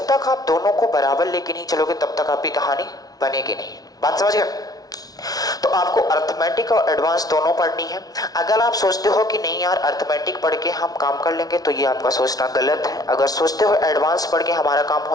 तक आप दोनों को बराबर लेके नहीं चलोगे तब तक आपकी कहानी बनेगी नहीं। बात समझ गए? तो आपको अर्थमेटिक और एडवांस दोनों पढ़नी है। अगर आप सोचते हो कि नहीं यार अर्थमेटिक पढ़ के हम काम कर लेंगे तो ये आपका सोचना गलत है। अगर सोचते हो एडवांस पढ़ के हमारा काम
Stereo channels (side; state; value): right; late; 0.18 ms